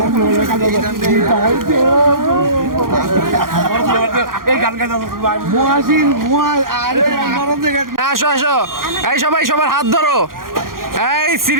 আসো আসো, এই সবাই সবার হাত ধরো। এই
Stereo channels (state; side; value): late; left; 0.91 ms